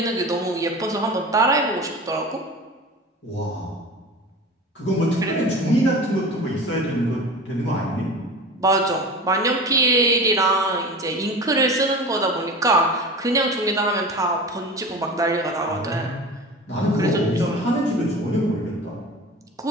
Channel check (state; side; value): normal; both; correlation 0.33